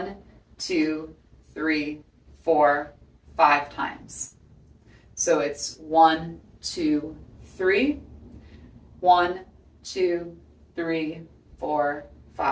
2, 3, 4, 5 times. So it's 1, 2, 3, 1, 2, 3, 4,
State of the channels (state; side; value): identical; both; correlation 1.00